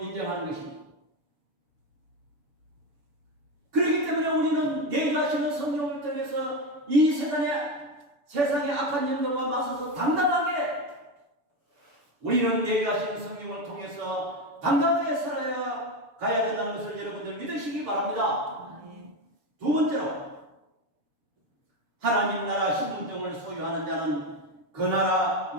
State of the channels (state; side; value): late; left; 7.0 ms